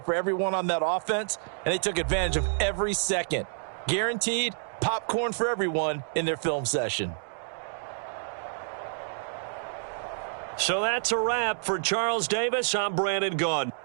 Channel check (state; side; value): silent; left; digital silence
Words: for everyone on that offense, and they took advantage of every second. Guaranteed popcorn for everyone in their film session. So that's a wrap for Charles Davis. I'm Brandon Gaudin.